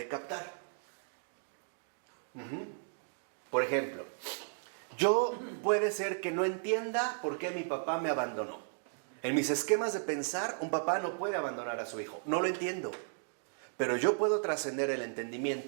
captar. Por ejemplo, yo puede ser que no entienda por qué mi papá me abandonó. En mis esquemas de pensar, un papá no puede abandonar a su hijo. No lo entiendo. Pero yo puedo trascender el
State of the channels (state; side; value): silent; left; digital silence